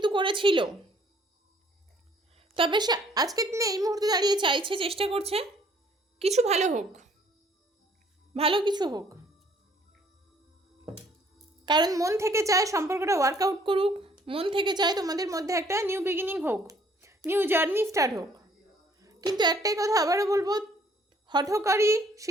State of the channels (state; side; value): normal; both; correlation 0.61